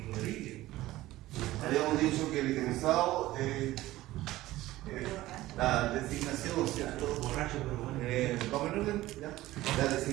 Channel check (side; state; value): left; quieter; 16.5 dB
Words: Habíamos dicho que el itemizado, la designación, ¿cierto? Borracho, pero bueno. ¿Vamos en orden? ¿Ya? La